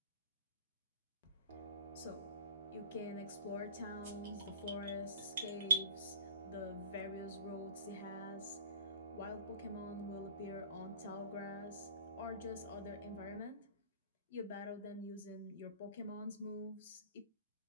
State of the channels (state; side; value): inverted; both; correlation -0.46